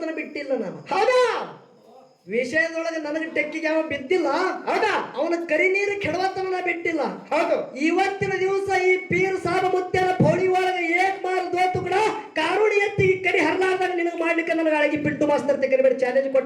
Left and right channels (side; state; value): both; identical; correlation 1.00